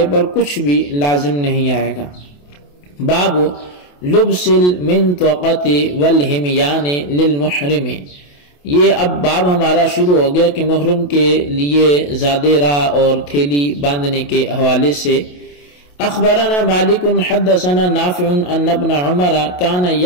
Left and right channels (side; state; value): right; late; 28 ms